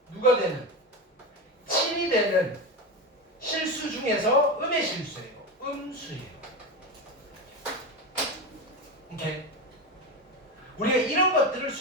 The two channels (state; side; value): normal; both; correlation 0.19